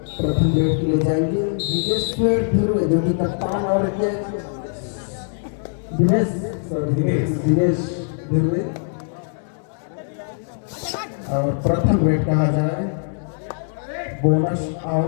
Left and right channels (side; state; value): right; silent; digital silence